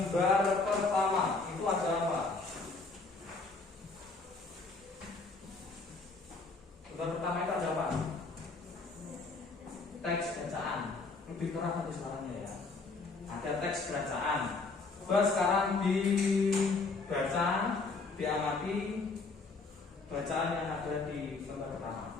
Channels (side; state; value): right; quieter; 3.9 dB